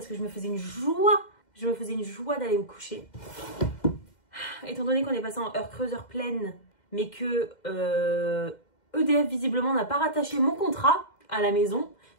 que je me faisais une joie. Je me faisais une joie d'aller me coucher. Étant donné qu'on est passé en heure creuse, heure pleine, mais que EDF visiblement n'a pas rattaché mon contrat à la maison.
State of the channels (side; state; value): right; late; 2.1 ms